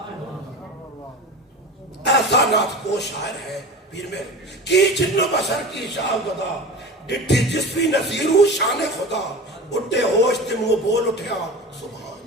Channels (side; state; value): both; normal; correlation 0.32